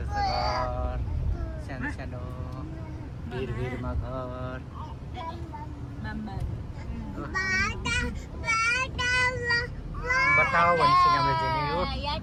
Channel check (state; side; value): identical; both; correlation 1.00